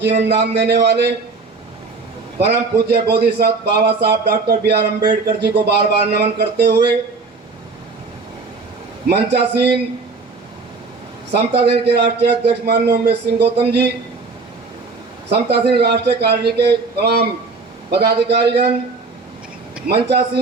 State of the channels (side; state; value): left; quieter; 4.2 dB